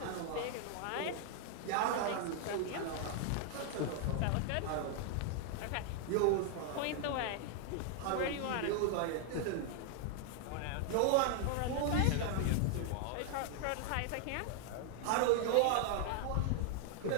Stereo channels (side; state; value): both; different; correlation 0.00